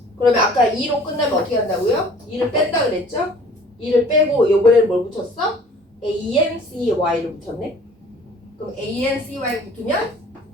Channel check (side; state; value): both; normal; correlation 0.50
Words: 그러면 아까 2로 끝나면 어떻게 한다고요? 2를 뺀다 그랬죠? 2를 빼고 이번에는 뭘 붙였어? ANCY를 붙였네. 그럼 ANCY 붙으면